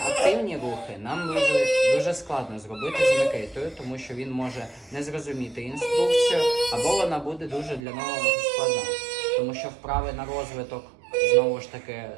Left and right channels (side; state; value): left; drops out; at 7.8 s